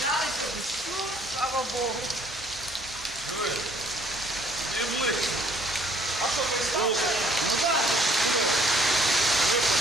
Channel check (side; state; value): both; normal; correlation 0.61